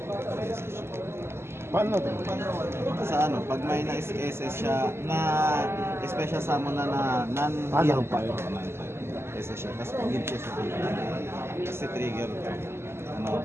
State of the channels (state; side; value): late; left; 0.12 ms